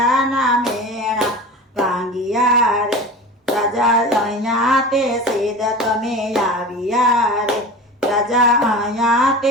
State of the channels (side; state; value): both; normal; correlation 0.33